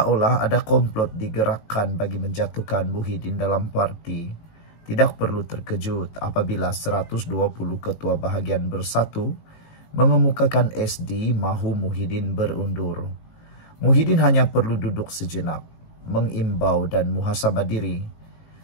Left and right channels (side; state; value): right; late; 18 ms